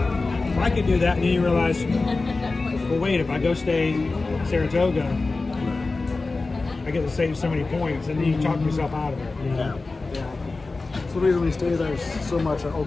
well, I could do that, and then you realize, well, wait, if I go stay in Saratoga, I get to save so many points, and then you talk yourself out of it. You know? Yeah. That's the reason we stay there so much at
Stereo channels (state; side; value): quieter; right; 3.6 dB